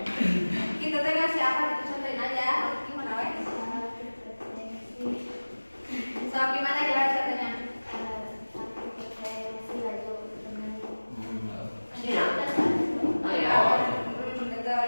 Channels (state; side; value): inverted; both; correlation -1.00